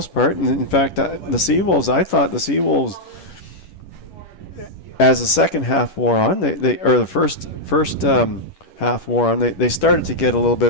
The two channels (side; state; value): right; late; 10 ms